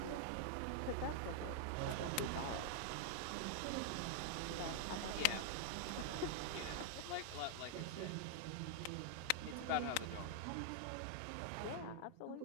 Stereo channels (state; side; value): different; both; correlation -0.01